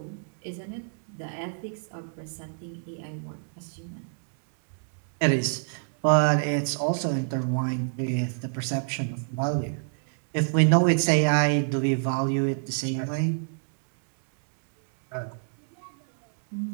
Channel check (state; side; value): silent; left; digital silence